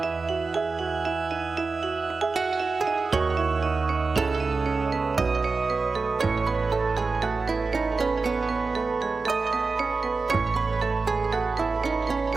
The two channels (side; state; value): left; quieter; 4.1 dB